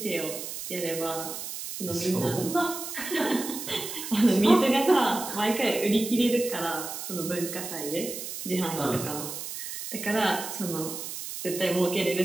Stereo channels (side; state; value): right; noise; hiss, 7 dB below the sound